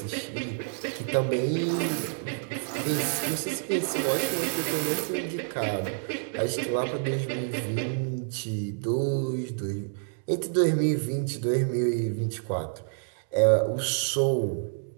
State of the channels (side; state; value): left; silent; digital silence